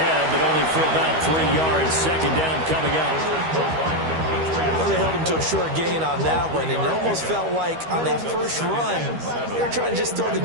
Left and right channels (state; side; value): late; left; 13 ms